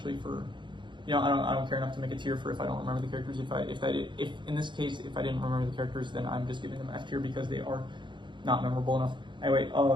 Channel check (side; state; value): left; late; 0.23 ms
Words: for, you know, I don't care enough to make a tier for if I don't remember the characters. If in this case, if I didn't remember the characters, then I'm just giving them F tier because they are not memorable enough. Anyway,